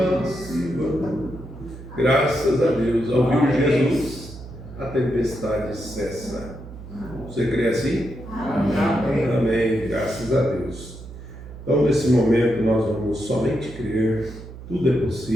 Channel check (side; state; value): right; noise; hum, 14 dB below the sound